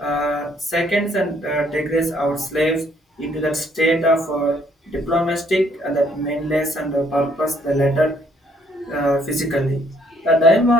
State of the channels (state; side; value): normal; both; correlation 0.66